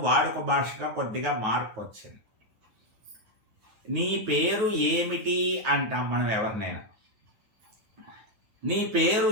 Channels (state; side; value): late; left; 9.3 ms